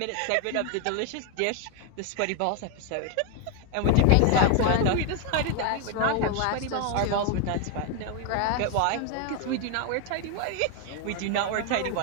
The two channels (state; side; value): different; both; correlation 0.01